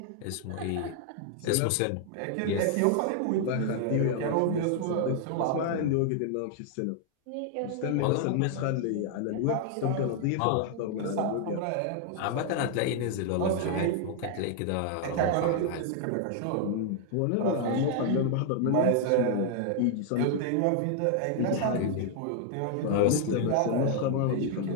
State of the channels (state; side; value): different; both; correlation 0.00